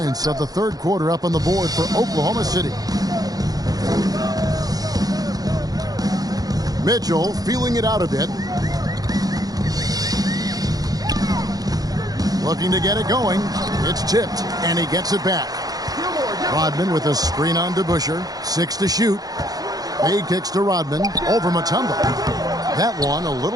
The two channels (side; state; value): left; late; 0.18 ms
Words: of the third quarter up on the board for Oklahoma City. Mitchell feeling it out a bit. Looking to get it going. It's tipped, and he gets it back. Rodman with a screen on DeBusschere. 6 to shoot. Fade kicks to Rodman. Over Mutombo. That one a